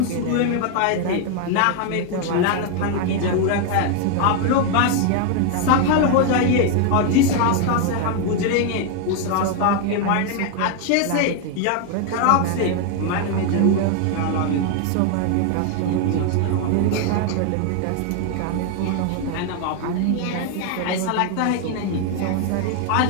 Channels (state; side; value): different; both; correlation 0.01